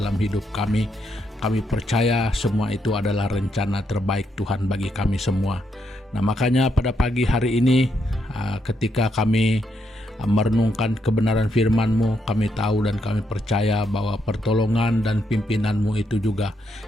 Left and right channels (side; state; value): both; normal; correlation 0.78